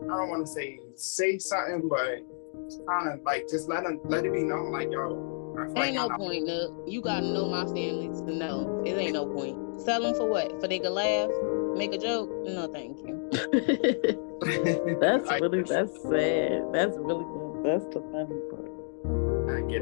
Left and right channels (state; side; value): silent; right; digital silence